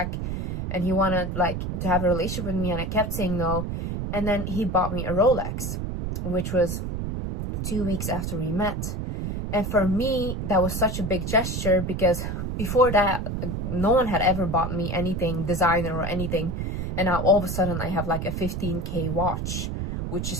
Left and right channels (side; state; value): right; noise; rumble, 3 dB below the sound